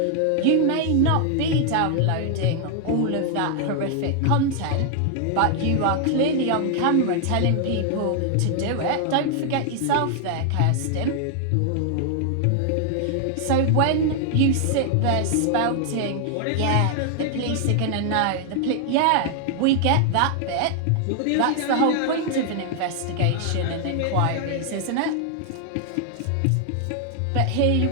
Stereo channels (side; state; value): both; different; correlation 0.00